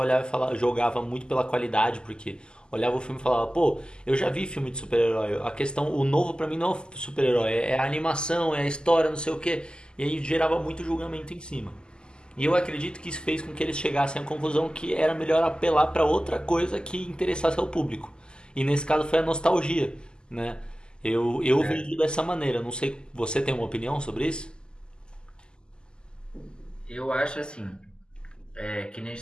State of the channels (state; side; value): late; right; 0.047 ms